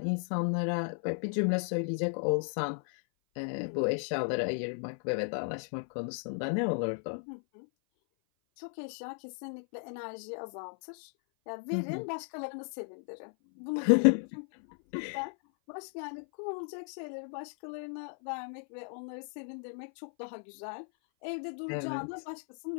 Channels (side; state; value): right; silent; 54 dB below the other